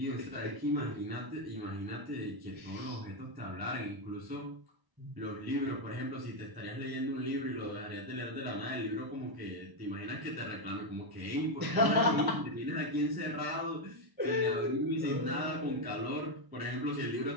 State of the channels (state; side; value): late; left; 1.0 ms